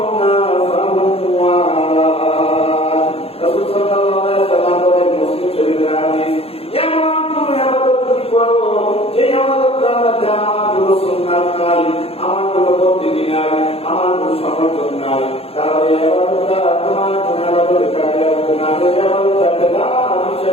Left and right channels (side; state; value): right; late; 0.28 ms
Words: ফাহুয়া রাদ। রাসূল সাল্লাল্লাহু আলাইহি ওয়াসাল্লাম বলেন, মুসলিম শরীফের হাদিস, এমন কোন ইবাদত যদি করো যে ইবাদতটা মধ্যে আমার কোনো সুন্নাত নাই, আমার কোনো পদ্ধতি নাই, আমার কোনো সমর্থন নাই, তাহলে ইবাদতটা তোমার কোনো ইবাদত কাজে আসবে না। এই ইবাদতটা বেদাত